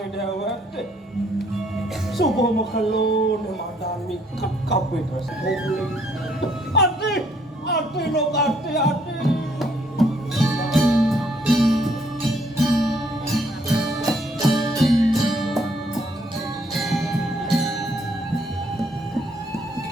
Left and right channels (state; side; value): normal; both; correlation 0.67